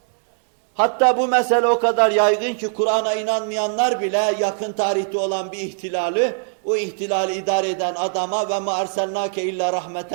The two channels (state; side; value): silent; left; digital silence